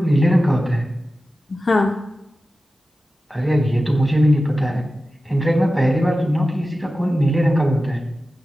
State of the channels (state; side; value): normal; both; correlation 0.94